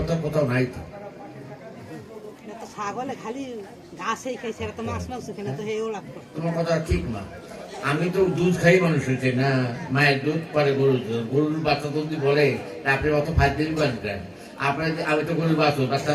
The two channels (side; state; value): both; identical; correlation 1.00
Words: কোথাও নাই তো। তোমার কথা ঠিক না। আমি তো দুধ খাই মানুষ হয়েছে না, মায়ের দুধ পরে গরুর দুধ, গরুর বাচ্চা যদি বলে আপনি অত ফাইভ বাঁধবেন, আপনার আমি তো গরুর বাচ্চা